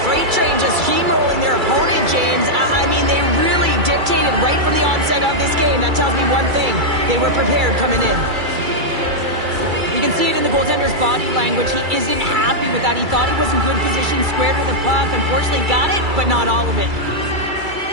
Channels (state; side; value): late; left; 2.3 ms